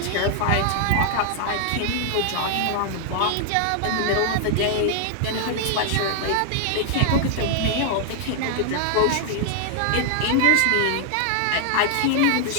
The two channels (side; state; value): both; different; correlation 0.00